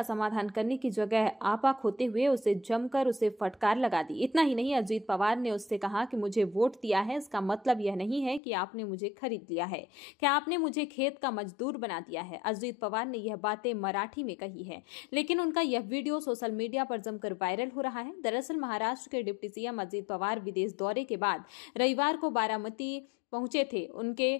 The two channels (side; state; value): right; drops out; at 8.4 s